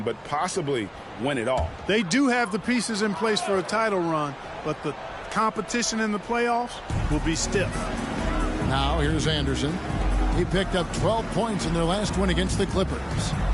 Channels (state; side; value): identical; both; correlation 1.00